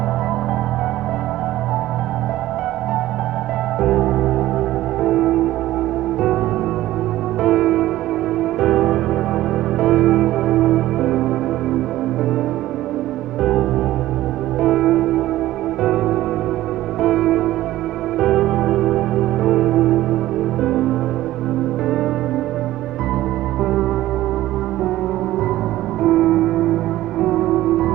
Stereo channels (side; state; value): left; quieter; 15.2 dB